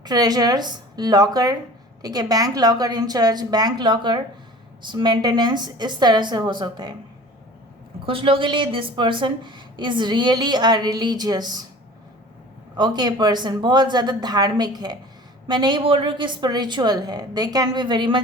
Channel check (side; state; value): both; normal; correlation 0.42